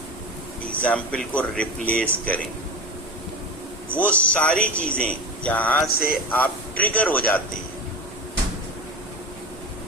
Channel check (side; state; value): both; normal; correlation 0.28